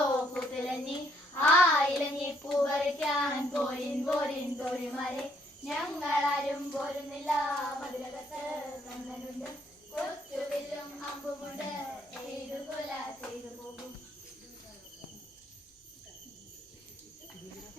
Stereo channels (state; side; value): normal; both; correlation 0.69